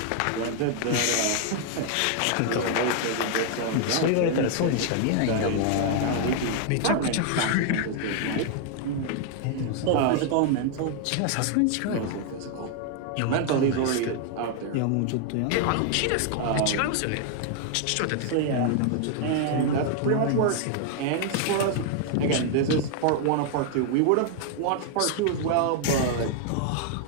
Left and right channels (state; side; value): different; both; correlation 0.00